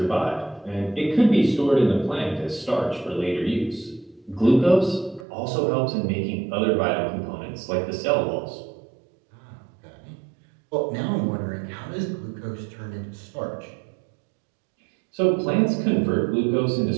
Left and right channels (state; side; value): drops out; left; at 5.2 s